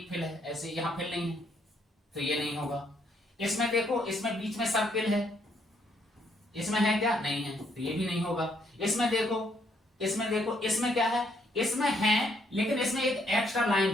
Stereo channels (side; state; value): both; normal; correlation 0.71